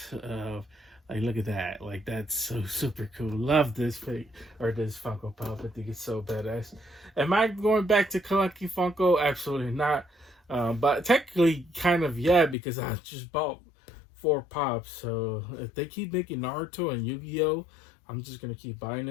Like, look at that. Like, that's so super cool. Love this fake or this Funko Pop. I think it's so badass. Am I going back to collecting Funko? Absolutely not. But technically, kind of, yeah, because I just bought 4 pops. So if they keep making Naruto and Yu-Gi-Oh, I'm just going to keep buying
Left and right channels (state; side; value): drops out; right; at 12.6 s